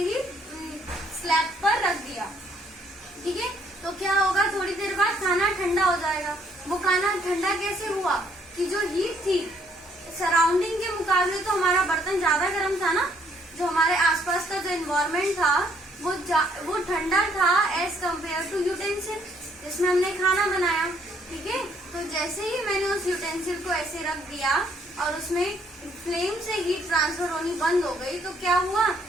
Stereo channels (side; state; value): both; normal; correlation 0.67